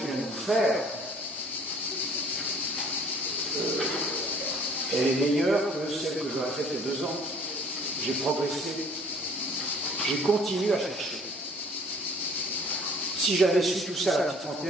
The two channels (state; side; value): normal; both; correlation 0.55